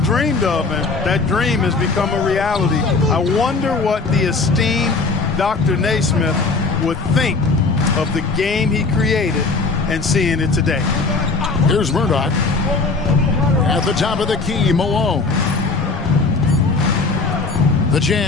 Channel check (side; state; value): right; quieter; 4.0 dB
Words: of, and that dream has become a reality. I wonder what the esteemed Dr. Naismith would think of the game he created and seeing it today. Here's Murdoch. At the top of the key, Malone. The